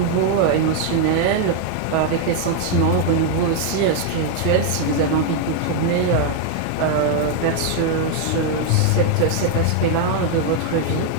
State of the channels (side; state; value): both; different; correlation 0.00